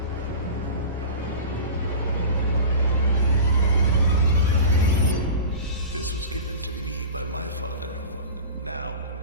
This was given to me by my father. Now I'm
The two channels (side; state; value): both; inverted; correlation -0.32